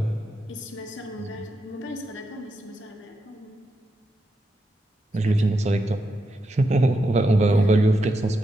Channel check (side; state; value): both; normal; correlation 0.85